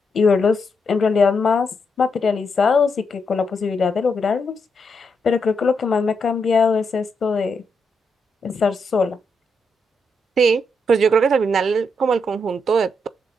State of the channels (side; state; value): both; normal; correlation 0.81